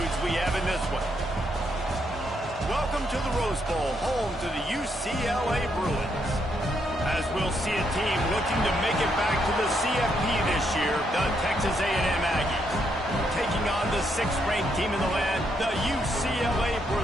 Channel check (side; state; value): both; normal; correlation 0.76